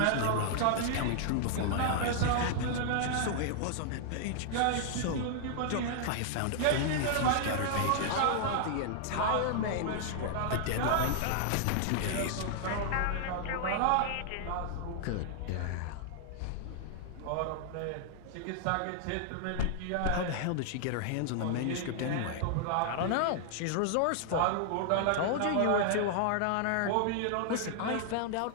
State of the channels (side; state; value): both; different; correlation -0.01